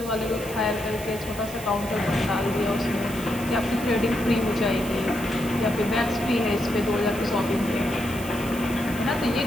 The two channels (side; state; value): right; noise; hiss, 14 dB below the sound